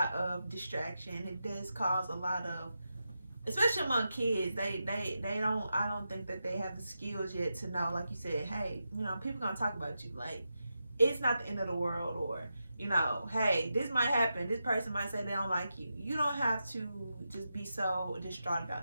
of distraction. It does cause a lot of, especially among kids, they don't, I don't think that they have the skills yet to know, like you said, hey, people gonna talk about you. Like, it's not the end of the world, or, hey, this might happen. This person might say they don't like you. You don't have to just be so distraught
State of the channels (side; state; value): both; inverted; correlation -0.88